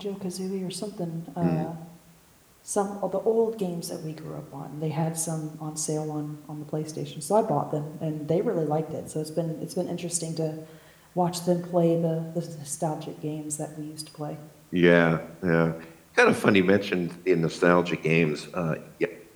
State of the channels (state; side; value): identical; both; correlation 1.00